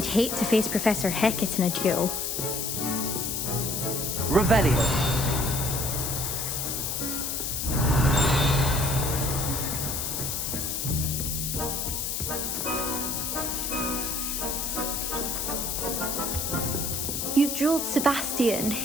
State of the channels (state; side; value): noise; left; hiss, 2 dB below the sound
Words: hate to face Professor Hecat in a duel. Revelio. You dueled Sebastian.